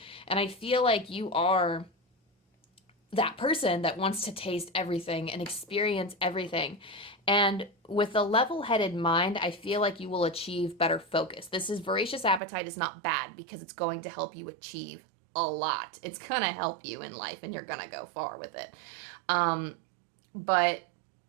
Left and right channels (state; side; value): drops out; left; at 12.4 s